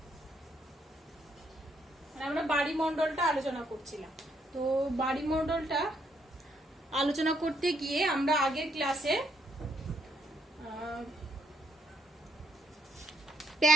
আমরা বাড়িমণ্ডলটা আলোচনা করছিলাম। তো বাড়িমণ্ডলটা আলোচনা করতে গিয়ে আমরা আগের ক্লাসে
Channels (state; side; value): normal; both; correlation 0.72